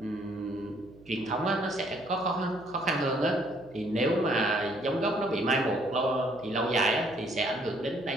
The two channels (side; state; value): right; noise; hum, 23 dB below the sound